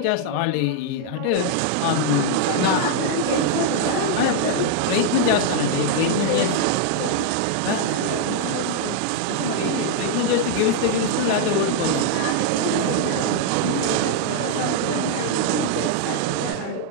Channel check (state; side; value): different; both; correlation -0.01